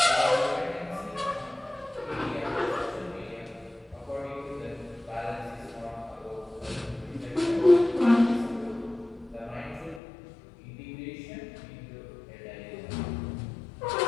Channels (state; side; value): drops out; right; at 10.0 s